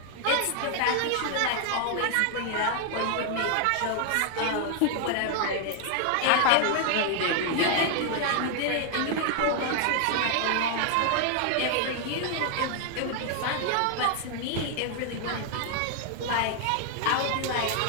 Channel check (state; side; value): different; both; correlation 0.00